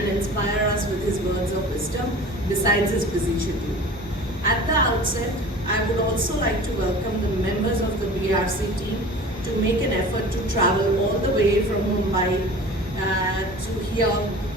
inspire us with his words of wisdom besides his busy schedule. At the outset, I would also like to welcome the members of the BARC team to make an effort to travel all the way from Mumbai to here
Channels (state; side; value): normal; both; correlation 0.40